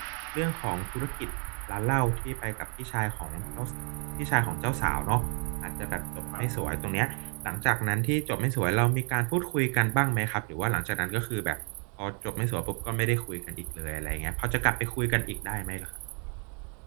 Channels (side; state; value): left; quieter; 38.5 dB